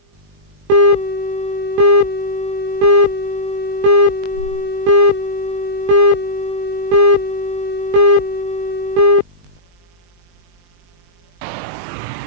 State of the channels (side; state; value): left; late; 21 ms